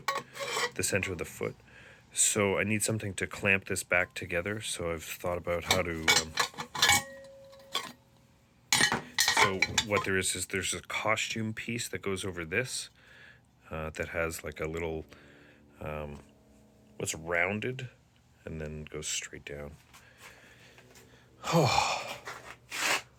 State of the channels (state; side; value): identical; both; correlation 1.00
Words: center of the foot. So I need something to clamp this back together. So I've thought about how to, so what there is there's a costume piece that goes over this that has like a little, what's rounded and then goes straight down. Oh,